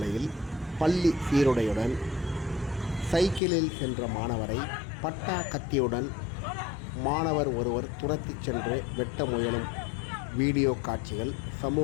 பள்ளி சீருடையுடன் சைக்கிளில் சென்ற மாணவரை பட்டா கத்தியுடன் மாணவர் ஒருவர் துரத்திச் சென்று வெட்ட முயலும் வீடியோ காட்சிகள்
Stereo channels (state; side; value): drops out; right; at 3.4 s